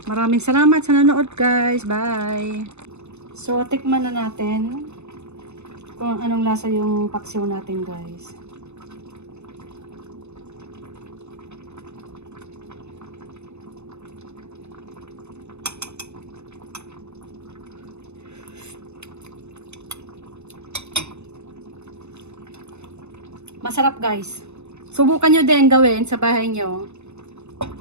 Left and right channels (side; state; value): left; late; 0.81 ms